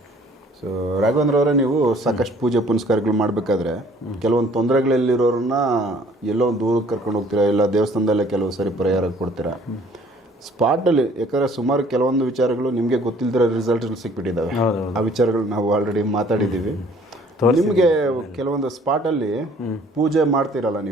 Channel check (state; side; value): normal; both; correlation 0.57